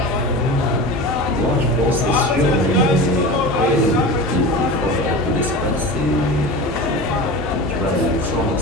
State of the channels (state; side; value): normal; both; correlation 0.31